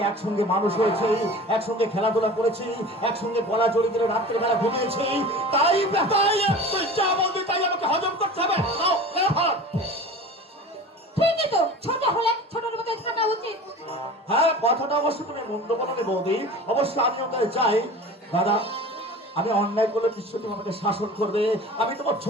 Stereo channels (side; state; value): both; normal; correlation 0.38